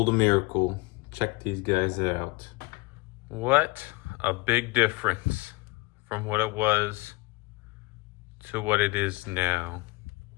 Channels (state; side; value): quieter; right; 22.7 dB